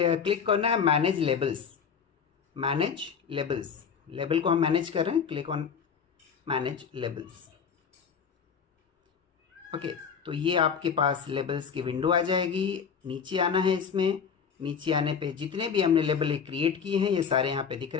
करना है manage labels. Manage labels, label को हम मैनेज कर रहे हैं, click on manage labels. Okay, तो ये आपके पास लेबल्स की विंडो आ जाएगी। नीचे आना है, इसमें नीचे आने पे जितने भी हमने लेबल क्रिएट किए हैं ये सारे यहाँ पे दिख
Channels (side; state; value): right; quieter; 6.7 dB